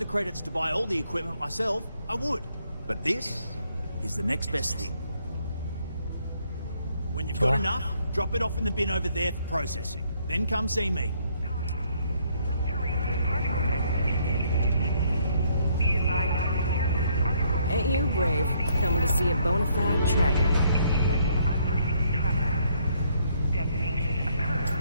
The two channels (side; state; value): both; inverted; correlation -0.69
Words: credits to buy all the equipment myself, I would. But this is the next best thing. When you've got enough, drop it off in the bin over there for processing. Then come see me. Ain't you brave, coming to see a bona fide tracker?